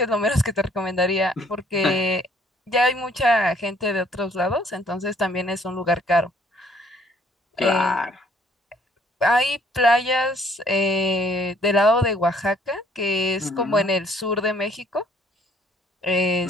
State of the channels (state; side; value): normal; both; correlation 0.62